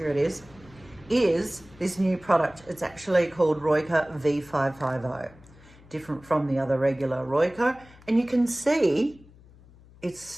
it is this new product. It's actually called ROICA V550, different from the other regular ROICA. And you can see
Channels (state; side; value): noise; left; hum, 24 dB below the sound